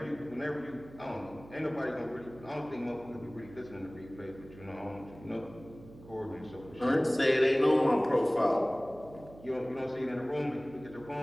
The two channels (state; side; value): noise; right; hum, 19 dB below the sound